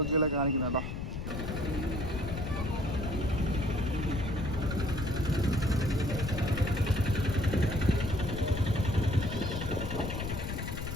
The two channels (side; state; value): left; noise; rumble, 5 dB below the sound